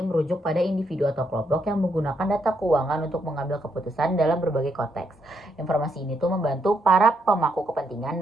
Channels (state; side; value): normal; both; correlation 0.77